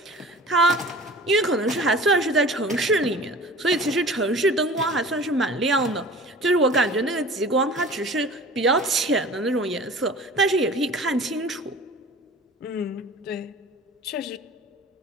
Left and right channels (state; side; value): normal; both; correlation 0.42